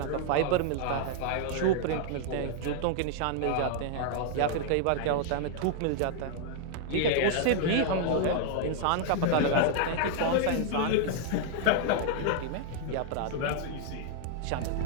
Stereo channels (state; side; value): different; both; correlation 0.00